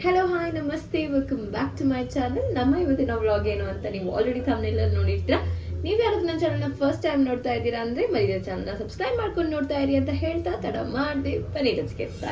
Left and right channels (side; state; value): both; identical; correlation 1.00